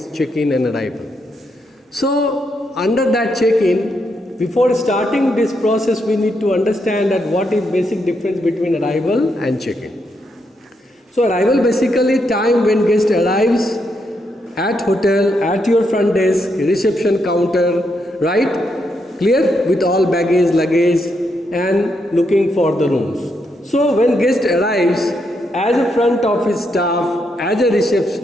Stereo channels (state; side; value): normal; both; correlation 0.80